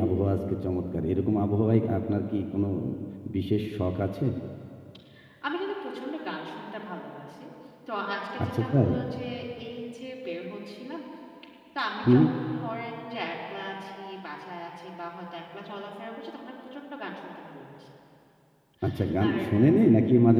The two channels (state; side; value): identical; both; correlation 1.00